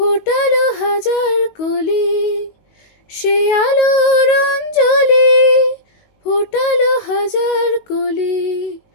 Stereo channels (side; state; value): right; late; 19 ms